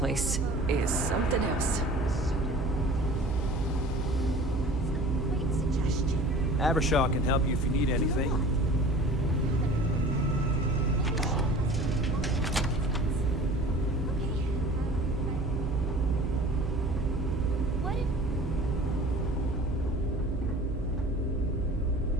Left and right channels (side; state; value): right; noise; hum, 4 dB below the sound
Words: is something else. Avershaw can help you if you need anything.